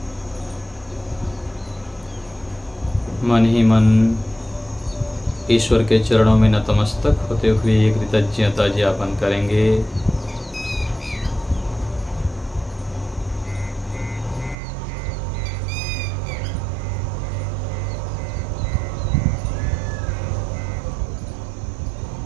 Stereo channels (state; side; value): drops out; left; at 14.6 s